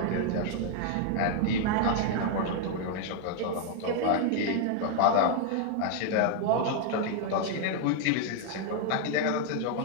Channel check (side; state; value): both; different; correlation 0.00